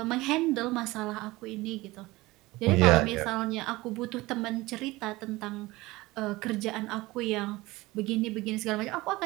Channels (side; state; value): left; quieter; 20.3 dB